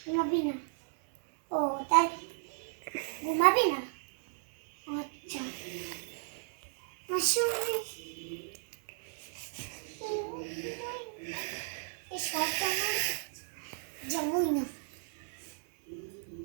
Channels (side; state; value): left; silent; 55 dB below the other